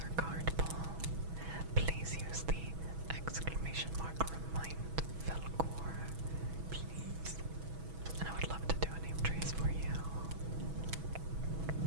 or card pull. Please use the exclamation mark remind Faolkor, please. And I would love to do a name trace for you.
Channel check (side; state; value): left; late; 6.1 ms